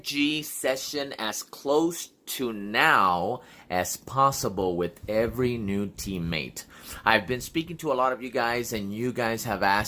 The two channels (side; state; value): both; identical; correlation 1.00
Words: session as close to now as possible with every new teammate. I've been speaking to a lot of you guys, and you guys have